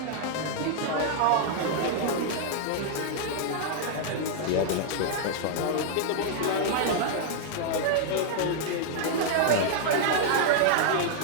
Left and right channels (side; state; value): both; different; correlation -0.01